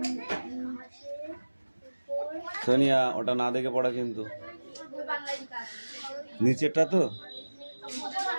সোনিয়া, ওটা না দেখে পড়া কিন্তু, নিচেরটা তো।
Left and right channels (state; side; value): inverted; both; correlation -1.00